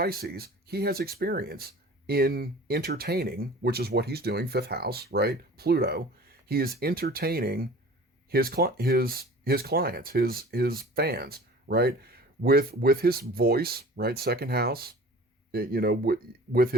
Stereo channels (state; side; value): normal; both; correlation 0.44